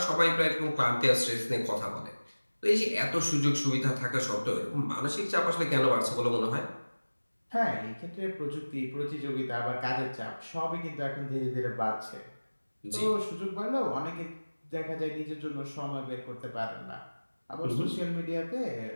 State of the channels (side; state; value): both; inverted; correlation -1.00